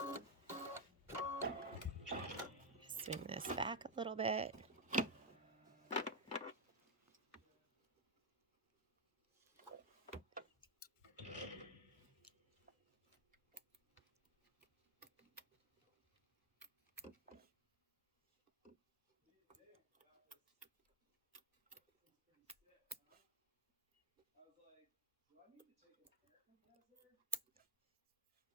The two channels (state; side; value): normal; both; correlation 0.05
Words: Swing this back a little bit.